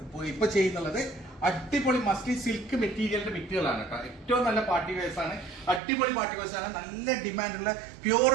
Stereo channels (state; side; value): drops out; left; at 5.8 s